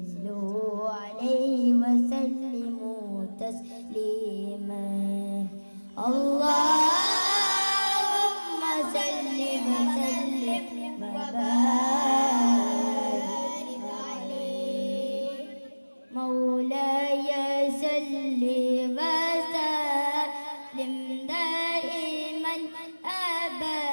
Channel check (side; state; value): both; inverted; correlation -1.00